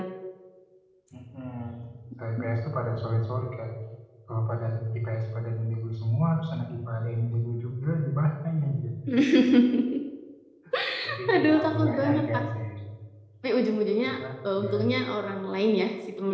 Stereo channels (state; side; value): identical; both; correlation 1.00